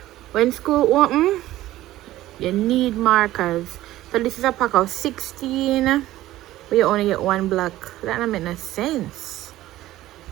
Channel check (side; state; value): left; quieter; 15.3 dB